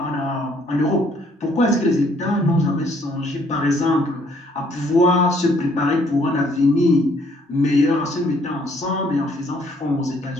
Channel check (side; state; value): both; normal; correlation 0.64